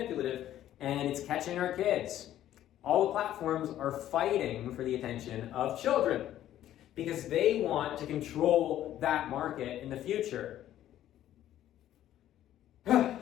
And it's catching our kids. All the platforms are fighting for the attention of children because they want to control that market in the future.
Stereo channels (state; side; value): quieter; right; 12.3 dB